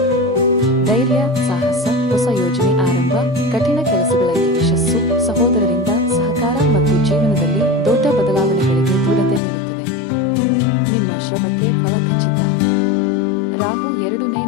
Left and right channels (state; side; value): drops out; right; at 9.4 s